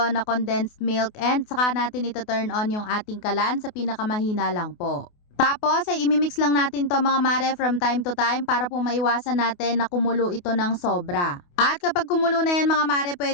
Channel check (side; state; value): right; late; 28 ms